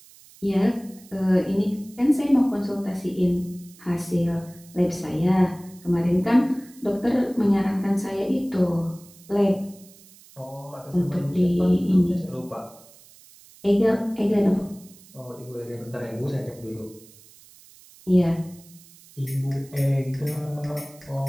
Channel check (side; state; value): right; noise; hiss, 24 dB below the sound